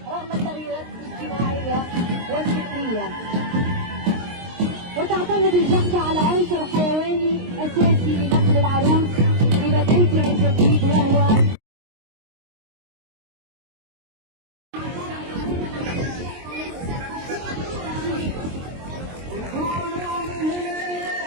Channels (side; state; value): left; late; 23 ms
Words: رغم التغييرات الاجتماعية والفكرية. وتعتمد الجحفة على عنصر حيواني أساسي لنقل العروس إلى بيتها الجديد وهو